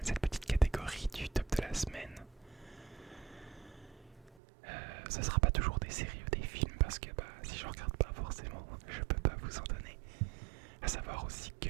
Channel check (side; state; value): left; drops out; at 4.4 s